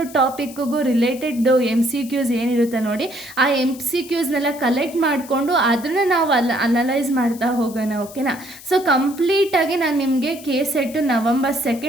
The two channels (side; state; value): left; noise; hiss, 18 dB below the sound